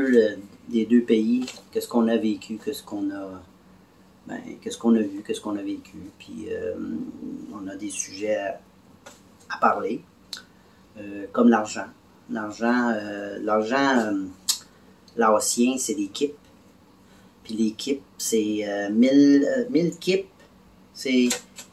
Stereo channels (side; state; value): both; identical; correlation 1.00